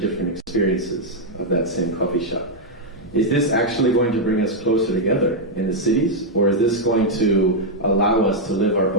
experiences of that same coffee shop. Is this actually going to bring us closer together in the cities, or is this going to allow us to live our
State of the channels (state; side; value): normal; both; correlation -0.02